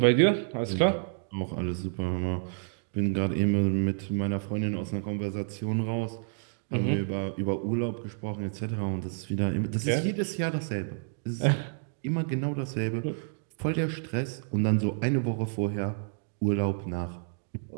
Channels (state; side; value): silent; left; digital silence